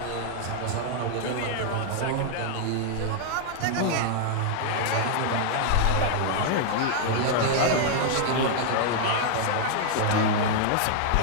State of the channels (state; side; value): different; both; correlation 0.00